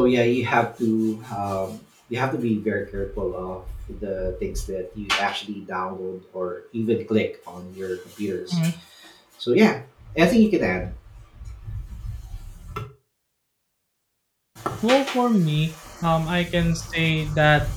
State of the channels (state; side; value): identical; both; correlation 1.00